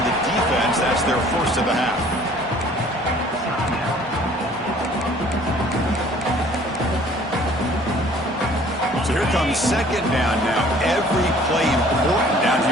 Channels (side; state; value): both; normal; correlation 0.54